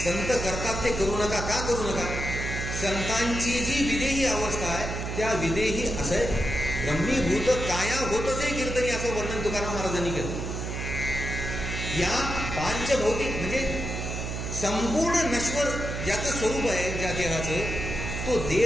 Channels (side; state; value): right; noise; hum, 4 dB below the sound